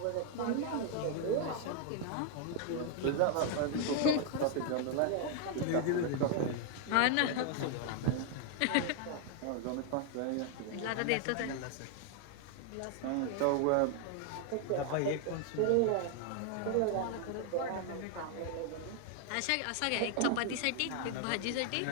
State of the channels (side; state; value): both; different; correlation 0.00